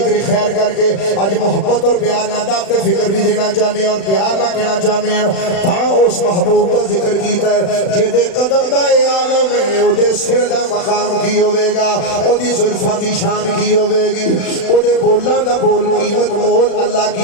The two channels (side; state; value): right; late; 36 ms